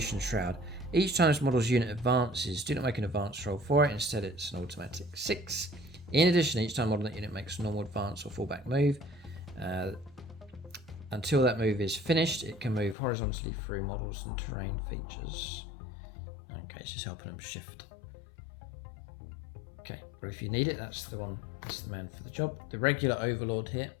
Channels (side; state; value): right; drops out; at 13.0 s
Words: Shroud, each time this model's unit advances, do not make an advance roll for it, instead it's an automatic 6. In addition, each time model that unit makes a normal advance or fallback move, until that move is finished, it can move horizontally through models and terrain features. Okay, it's just helping them shift. Okay, but if you need it, that's the one, that's the man for the job. The regular Overlord here,